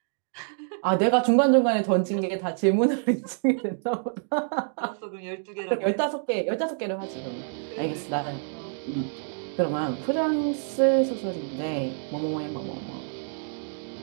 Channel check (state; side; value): silent; left; digital silence